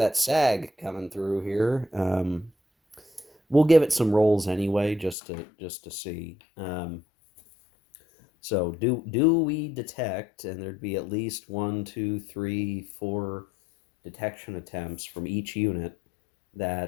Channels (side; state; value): right; drops out; at 5.2 s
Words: SAG coming through here. We'll give it some rolls anyway, just to see. So do we detect? And there'd be at least one, two, three, four detection attempts from each unit